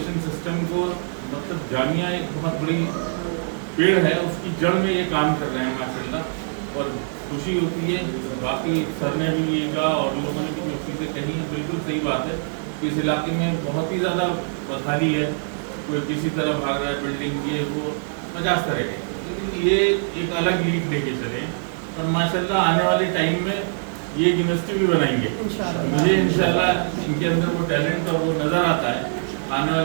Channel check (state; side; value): silent; left; digital silence